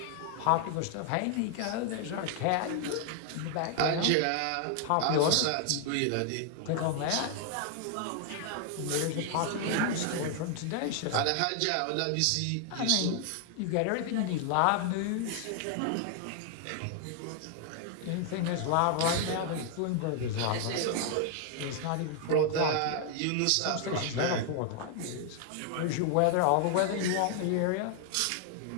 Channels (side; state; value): both; different; correlation 0.00